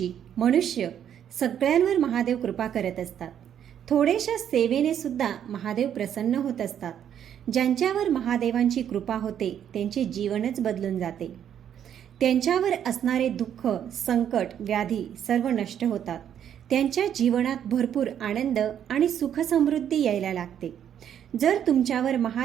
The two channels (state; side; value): quieter; left; 9.5 dB